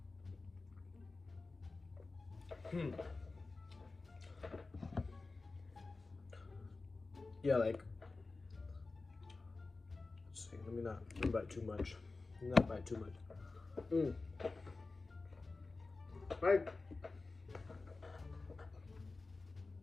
Yeah, like, let's see, let me not bite too much. Not bite too much. Right.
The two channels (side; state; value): right; quieter; 3.6 dB